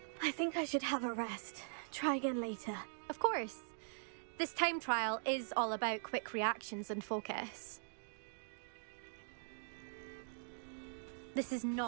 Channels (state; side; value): silent; left; digital silence